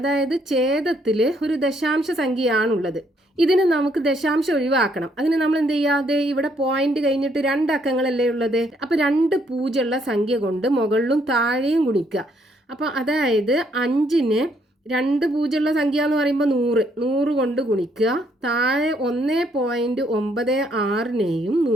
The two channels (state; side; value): normal; both; correlation 0.70